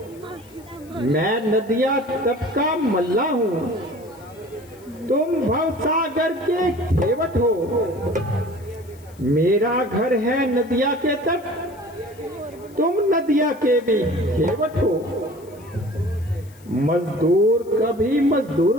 मैं नदिया तट का मल्ला हूँ, तुम भवसागर के खेवट हो। मेरा घर है नदिया के तट, तुम नदिया के भी खेवट हो। मजदूर कभी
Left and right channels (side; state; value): left; noise; hiss, 27 dB below the sound